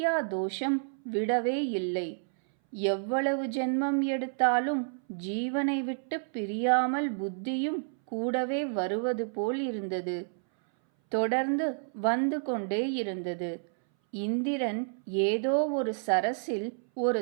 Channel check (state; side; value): silent; left; 58 dB below the other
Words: தோஷம் விடவே இல்லை. எவ்வளவு ஜென்மம் எடுத்தாலும் ஜீவனை விட்டு பிரியாமல் புத்தியும் கூடவே வருவது போல் இருந்தது. தொடர்ந்து வந்து கொண்டே இருந்தது. இந்திரன் ஏதோ ஒரு சரசில் ஒரு